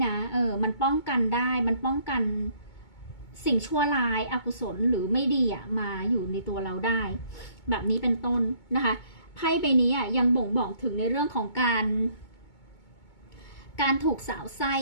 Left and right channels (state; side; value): late; right; 2.2 ms